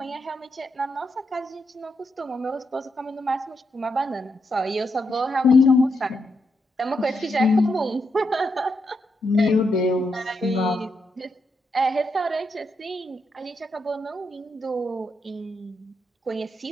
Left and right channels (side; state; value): both; normal; correlation 0.82